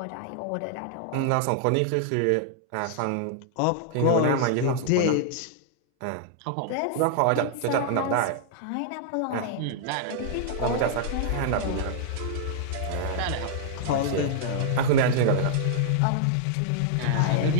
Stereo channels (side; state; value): both; different; correlation -0.01